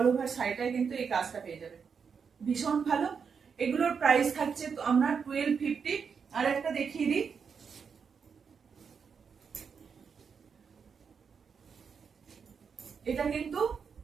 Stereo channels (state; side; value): quieter; left; 6.2 dB